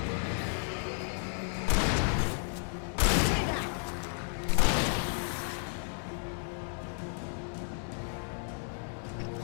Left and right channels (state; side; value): silent; right; 56 dB below the other